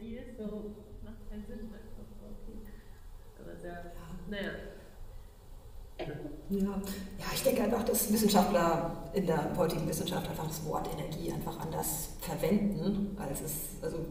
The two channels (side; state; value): both; identical; correlation 1.00